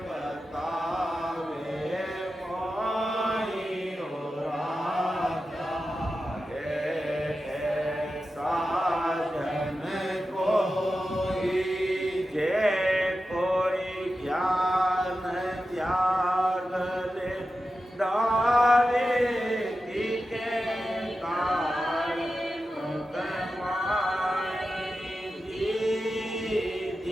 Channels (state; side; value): normal; both; correlation 0.92